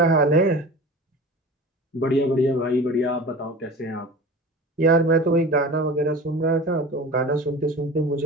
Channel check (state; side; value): normal; both; correlation 0.36